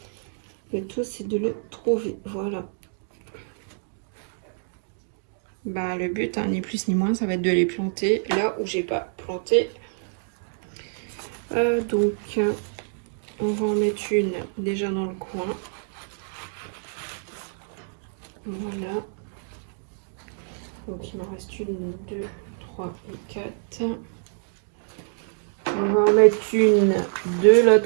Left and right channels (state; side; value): silent; left; digital silence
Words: Le tout, c'est de le trouver. Voilà. Bah, le but, hein, ni plus ni moins, ça va être de les planter là où j'ai pas planté. Donc, on va en mettre une déjà dans le coin. Voilà. Donc, il m'en reste une, deux, trois et 4. On va en mettre une de